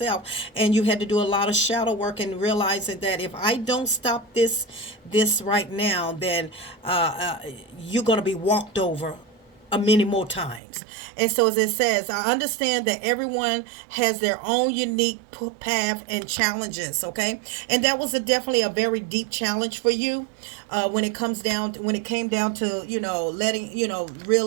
and you had to do a lot of shadow work, and realizing that if I don't stop this right now, then you're going to be walked over many more times. And so, as it says, I understand that everyone has their own unique path and challenges. Okay, and that was definitely a very deep challenge for you, when it came down to letting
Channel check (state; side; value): drops out; left; at 10.6 s